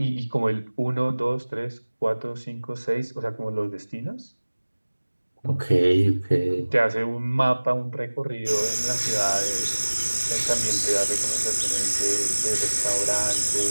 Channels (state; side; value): inverted; both; correlation -1.00